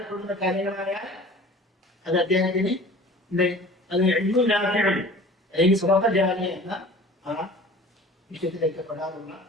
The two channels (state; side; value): normal; both; correlation 0.44